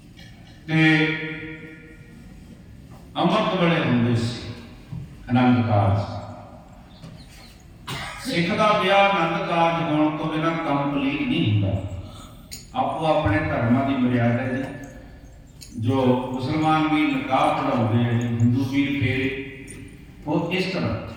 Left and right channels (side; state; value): both; identical; correlation 1.00